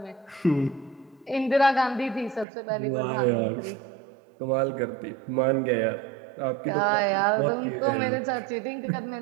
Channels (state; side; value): drops out; left; at 2.5 s